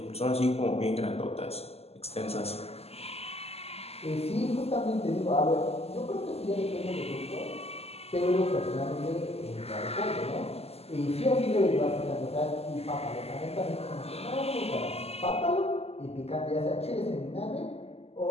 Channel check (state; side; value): late; right; 0.29 ms